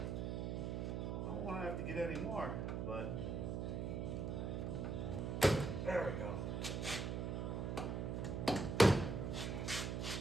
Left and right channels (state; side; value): noise; right; hum, 1 dB below the sound